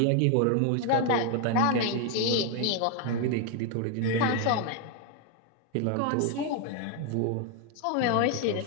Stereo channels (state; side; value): different; both; correlation 0.01